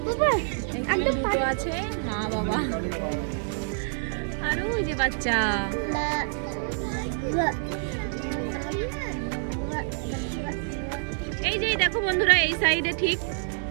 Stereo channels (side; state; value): left; silent; digital silence